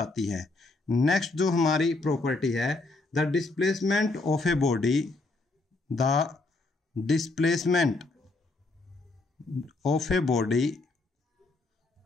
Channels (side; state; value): right; quieter; 3.2 dB